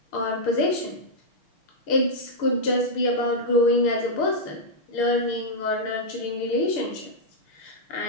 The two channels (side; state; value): right; late; 6.6 ms